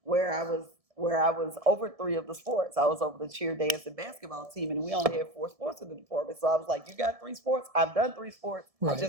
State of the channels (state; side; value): late; left; 1.7 ms